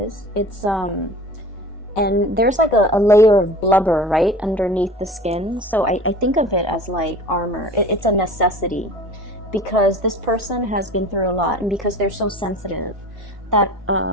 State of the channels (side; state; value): both; normal; correlation 0.40